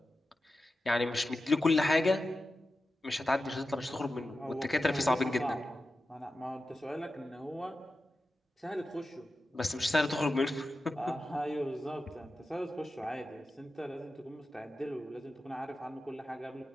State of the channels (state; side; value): normal; both; correlation 0.92